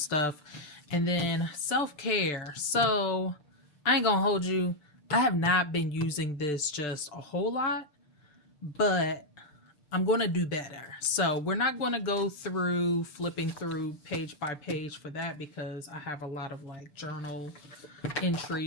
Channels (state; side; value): late; right; 6.8 ms